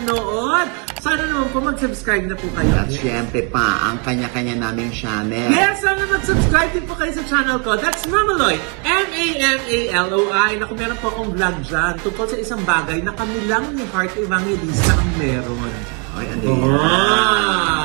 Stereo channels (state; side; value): quieter; left; 35.6 dB